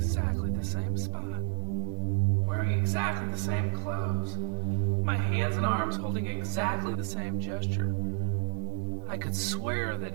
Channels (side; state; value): left; silent; 57 dB below the other